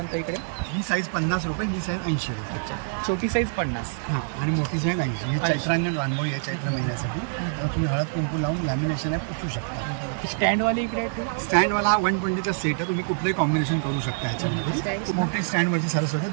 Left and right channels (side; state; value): left; silent; digital silence